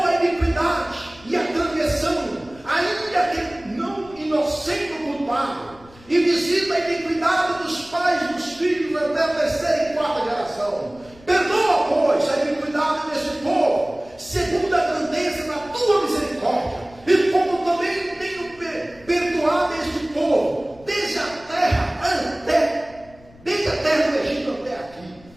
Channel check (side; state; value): left; noise; rumble, 25 dB below the sound